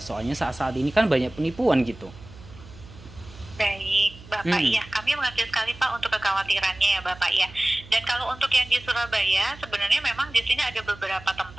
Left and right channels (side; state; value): right; noise; hum, 19 dB below the sound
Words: soalnya saat-saat ini kan banyak penipuan gitu. Baik, Bapak, Hmm. iya, kami mengerti sekali Pak untuk kekhawatirannya ya Bapak ya. Dan kalau untuk yang di Surabaya, sebenarnya memang di sini ada beberapa